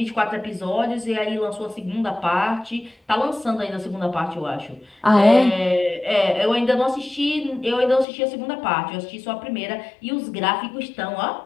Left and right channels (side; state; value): right; drops out; at 8.1 s